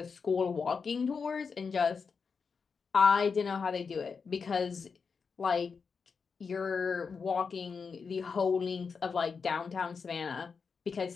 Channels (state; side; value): quieter; right; 5.4 dB